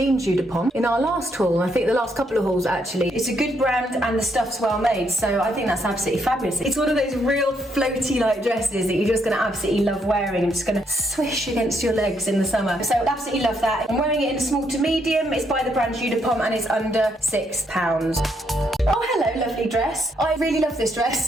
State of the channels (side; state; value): both; normal; correlation 0.74